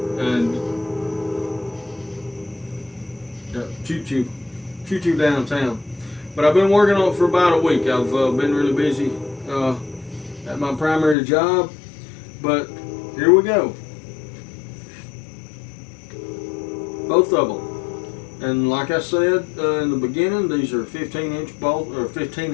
and choo-choo downtown. But I've been working on it for about a week. I've been really busy at my primary job, but here we go. Both of them. And like I said in the beginning, these are 15-inch bolts, or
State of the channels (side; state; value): right; drops out; at 11.2 s